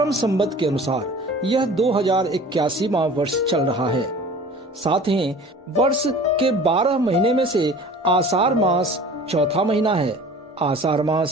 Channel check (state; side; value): normal; both; correlation 0.44